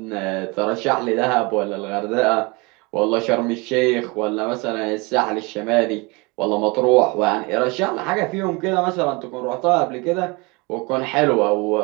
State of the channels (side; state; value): left; quieter; 27.3 dB